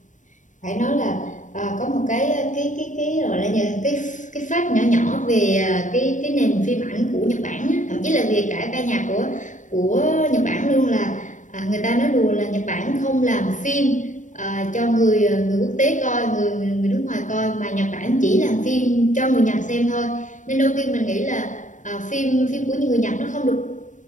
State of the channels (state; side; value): late; right; 0.37 ms